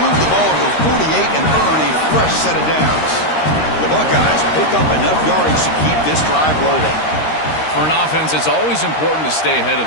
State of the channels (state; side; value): late; right; 13 ms